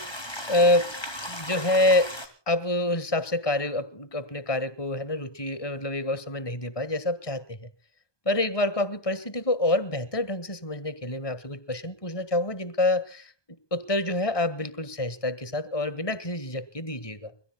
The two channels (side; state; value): right; late; 1.2 ms